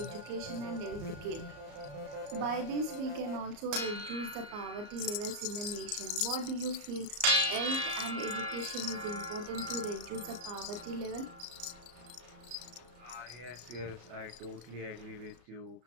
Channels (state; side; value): late; left; 34 ms